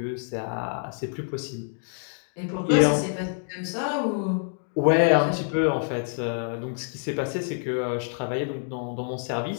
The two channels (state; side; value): silent; right; 60 dB below the other